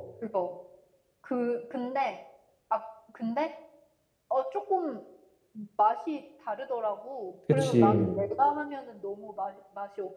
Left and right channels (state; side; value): identical; both; correlation 1.00